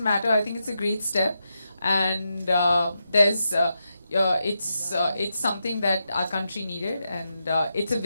matter. I think it's a great step and it's something that our country needed, and it's a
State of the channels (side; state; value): both; inverted; correlation -0.86